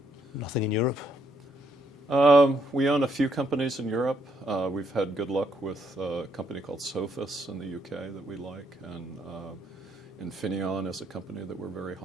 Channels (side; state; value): both; normal; correlation 0.72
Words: Nothing in Europe? We own a few companies in Europe. We've had good luck with a company called Sophos in the UK that we like, and Infineon is a company that we're very